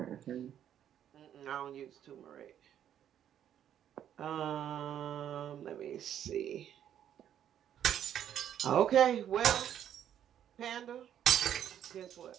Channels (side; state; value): left; quieter; 10.1 dB